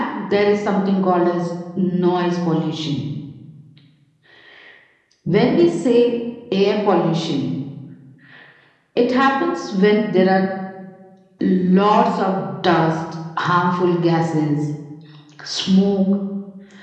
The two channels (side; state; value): both; identical; correlation 1.00